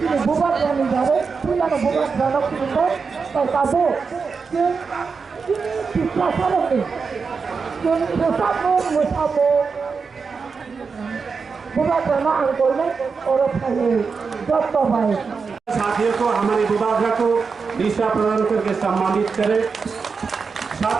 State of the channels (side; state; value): left; quieter; 5.2 dB